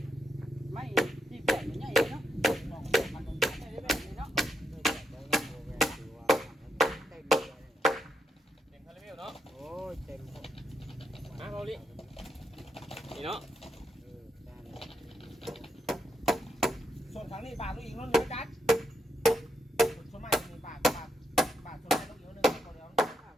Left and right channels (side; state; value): both; normal; correlation 0.80